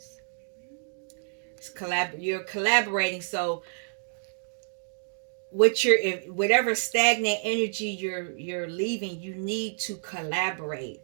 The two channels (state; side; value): silent; left; digital silence